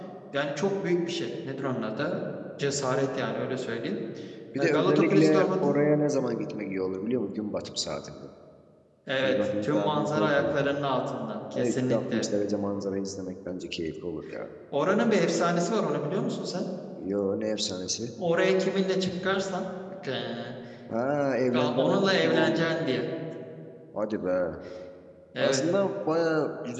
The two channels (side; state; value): both; identical; correlation 1.00